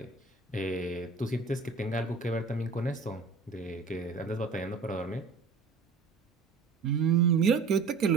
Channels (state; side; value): quieter; left; 4.5 dB